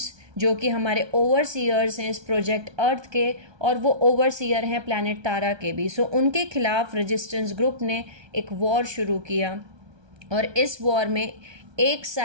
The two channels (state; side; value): late; left; 1.2 ms